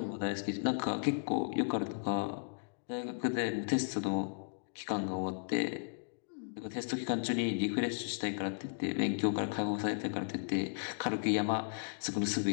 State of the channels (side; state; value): right; silent; digital silence